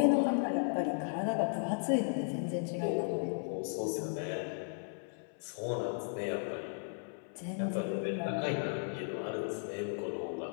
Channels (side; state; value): right; silent; 54 dB below the other